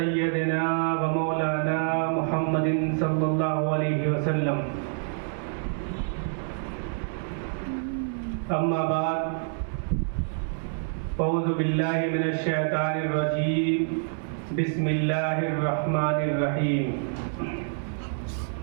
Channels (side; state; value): left; silent; digital silence